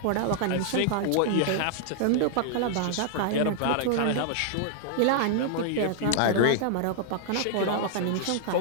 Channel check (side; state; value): both; different; correlation -0.01